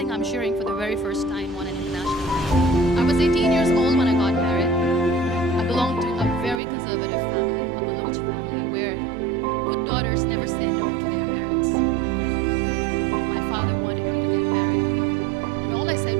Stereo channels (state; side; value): drops out; left; at 6.6 s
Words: I'm sharing for the very first time on an international level. I was 18 years old when I got married. I belonged to a very conservative family, a Baloch family, where good daughters never say no to their parents. My father wanted me to get married. And all I said